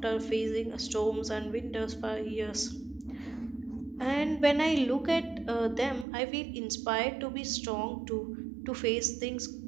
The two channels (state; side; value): drops out; left; at 6.1 s